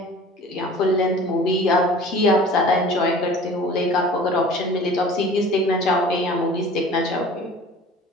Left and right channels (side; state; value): both; normal; correlation 0.45